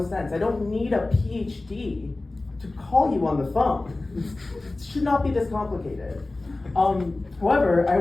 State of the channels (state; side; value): quieter; right; 3.1 dB